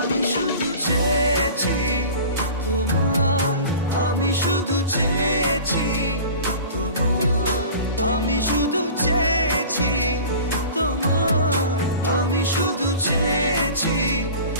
শুধু চেয়েছি তোমার, আমি শুধু চেয়েছি তোমার, আমি শুধু চেয়েছি তোমার, আমি শুধু চেয়েছি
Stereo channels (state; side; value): inverted; both; correlation -0.39